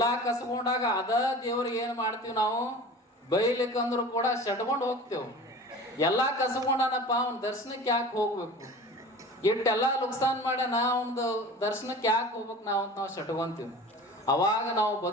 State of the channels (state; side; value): normal; both; correlation 0.39